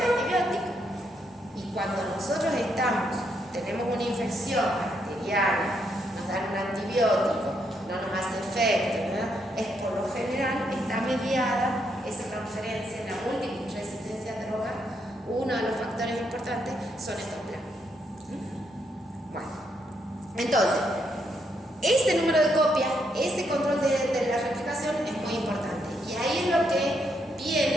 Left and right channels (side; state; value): both; normal; correlation 0.77